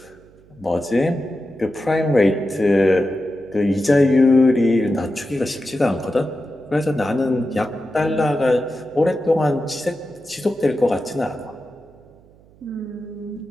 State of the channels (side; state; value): right; noise; hum, 27 dB below the sound